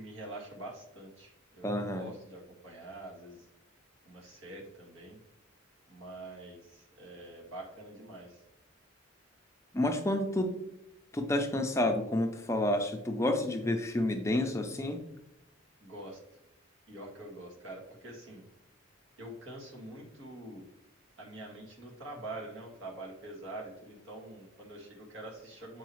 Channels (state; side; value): normal; both; correlation 0.58